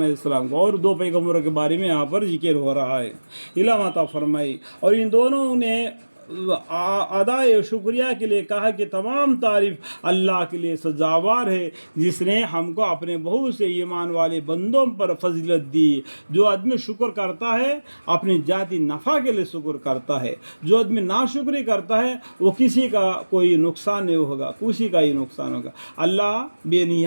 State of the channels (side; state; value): both; inverted; correlation -1.00